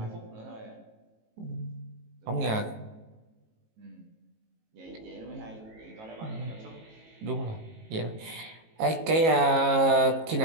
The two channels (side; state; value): left; late; 19 ms